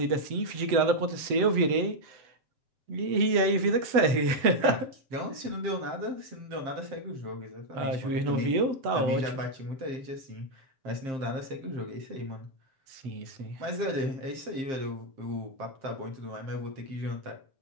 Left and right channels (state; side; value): late; left; 7.9 ms